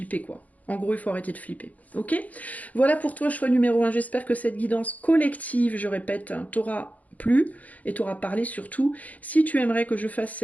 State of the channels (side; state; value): right; late; 0.074 ms